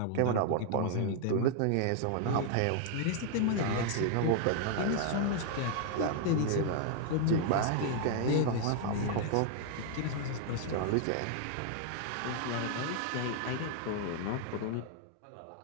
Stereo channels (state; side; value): different; both; correlation -0.01